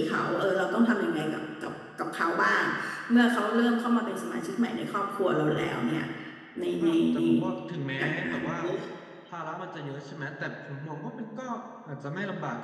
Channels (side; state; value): both; identical; correlation 1.00